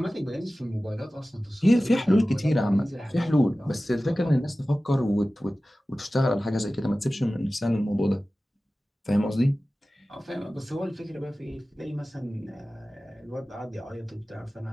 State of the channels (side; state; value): both; normal; correlation 0.96